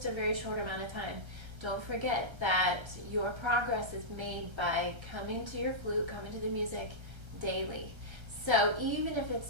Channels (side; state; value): left; late; 1.3 ms